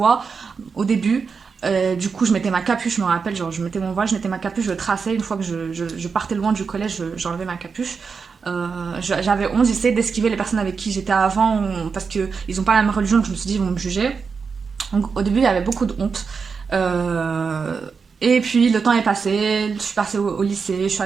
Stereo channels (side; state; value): left; quieter; 5.4 dB